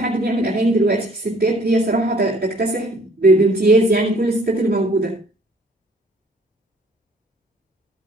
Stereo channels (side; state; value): both; normal; correlation 0.58